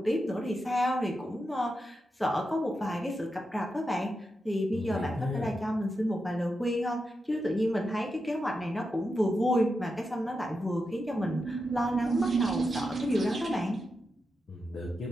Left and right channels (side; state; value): both; normal; correlation 0.88